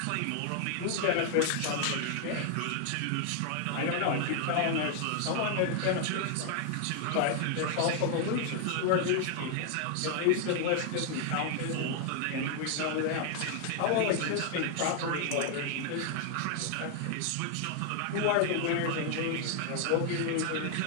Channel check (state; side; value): different; both; correlation 0.00